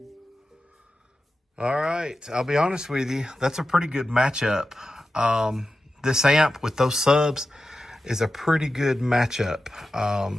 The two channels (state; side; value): normal; both; correlation 0.92